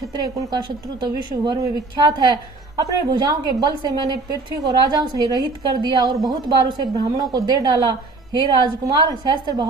कुल का शत्रु तो विश्व भर में विख्यात है। अपने भुजाओं के बल से मैंने पृथ्वी को राजाओं से रहित कर दिया और बहुत बार उसे ब्राह्मणों को दे डाला। हे राजकुमार, सहस्त्र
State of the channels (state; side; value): quieter; left; 3.5 dB